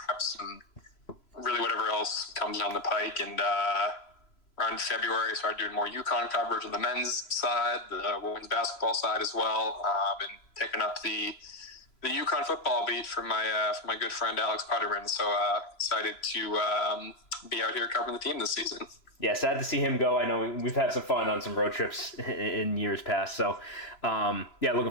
and really whatever else comes down the pike. And around February, I started doing more UConn coverage on the men's side, the women's basketball side as well. Been picking up the UConn football beat for my good friend Alex Putterman. So excited to be out here covering the team this season. Yeah, sad to see him go. I know we've had some fun on some road trips in years past. So, looking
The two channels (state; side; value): late; right; 3.0 ms